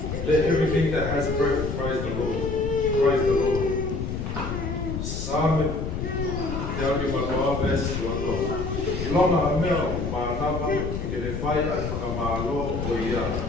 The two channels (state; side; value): noise; left; rumble, 4 dB below the sound